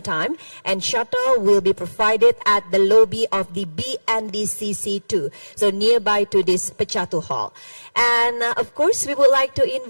time, and shuttle will be provided at the lobby of the BNDCC2, so nearby to this Pecatu Hall. And of course, we would like to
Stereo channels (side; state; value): both; inverted; correlation -1.00